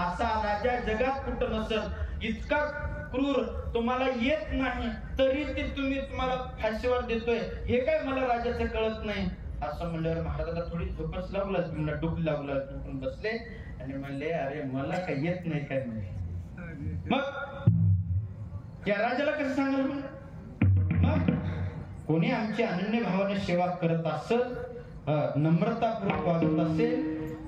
असा राजा जगात कुठं नसल. इतका क्रूर, तुम्हाला येत नाही तरी ते तुम्हाला फाशीवर देतोय, हे काय मला राजाचं कळत नाही. असं म्हणल्यावर महाराजाला थोडी झोपच लागला, डोकं लागलं, डोकून बसले आणि म्हणले, अरे मला काही येत नाही काय? म्हणजे मग या राजाला कसं सांगाल? मग कोणी आमची अनन्य भावाने सेवा करत असेल, नम्रतापूर्वक वागत असेल,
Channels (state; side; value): identical; both; correlation 1.00